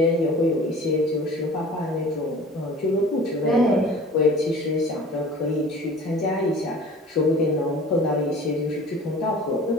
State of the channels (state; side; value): normal; both; correlation 0.43